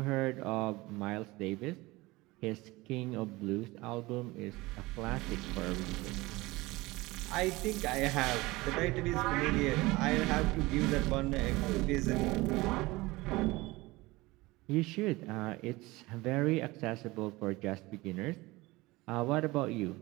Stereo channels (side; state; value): left; quieter; 21.2 dB